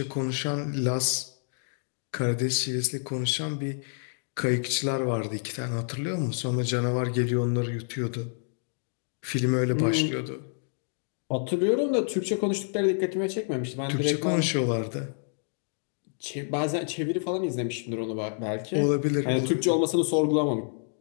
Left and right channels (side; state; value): right; silent; digital silence